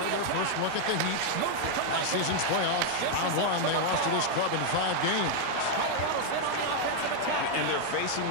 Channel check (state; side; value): different; both; correlation 0.00